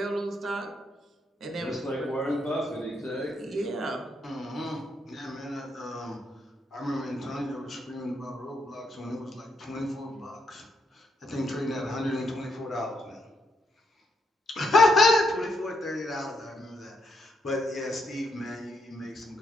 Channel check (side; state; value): both; normal; correlation 0.77